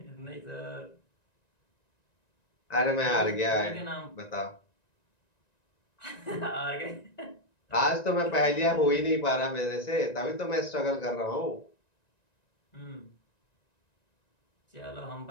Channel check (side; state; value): right; late; 1.9 ms